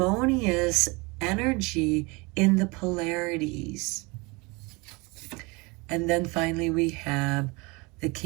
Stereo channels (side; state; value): left; quieter; 26.9 dB